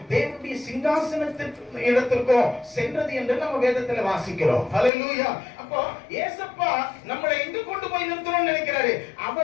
தேவனுடைய சிங்காசனத்திற்கு இடத்திற்கோ சென்றது என்று நம்ம வேதத்துல வாசிக்கிறோம். ஹல்லேலூயா. அப்போ ஏசப்பா நம்மளை எங்க கொண்டு போய் நிறுத்தணும்னு நினைக்கிறாரு?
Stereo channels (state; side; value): drops out; right; at 4.9 s